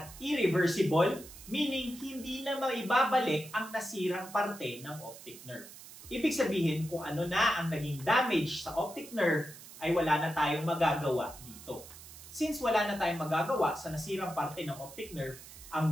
irreversible, meaning hindi na maibabalik ang nasirang parte ng optic nerve. Ibig sabihin kung ano na ang naging damage sa optic nerve ay wala na tayong magagawa dito. Since wala na tayong magagawa sa nasirang parte ng optic nerve,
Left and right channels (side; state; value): right; noise; hiss, 16 dB below the sound